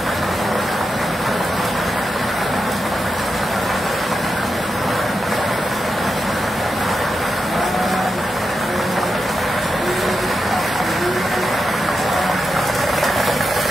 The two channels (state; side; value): normal; both; correlation 0.88